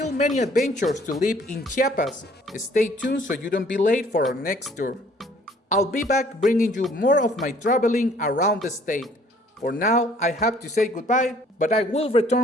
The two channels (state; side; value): normal; both; correlation 0.58